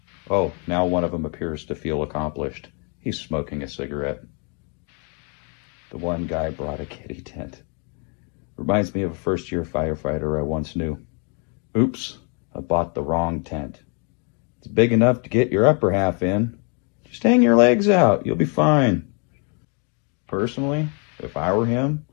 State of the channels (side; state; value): right; quieter; 37.5 dB